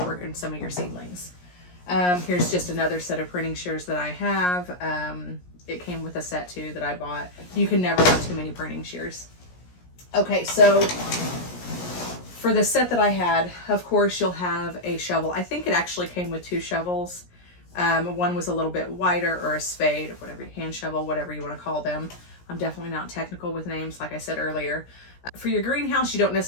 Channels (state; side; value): late; right; 17 ms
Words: some of your seedlings. Here's just another set of pruning shears that I have. It came with a set too that I bought. You can never have too many pruning shears. Okay, so for the set that I had, of course, you'll have a shovel. I think it actually came with 2 shovels. One was a little bit wider, or a spade, or whatever, hand shovel, whatever you want to call them. I'm definitely not technical with names, like I said earlier. For your greenhouse, you don't